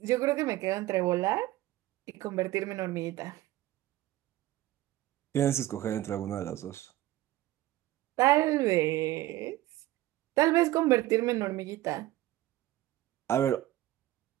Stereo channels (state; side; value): quieter; left; 15.7 dB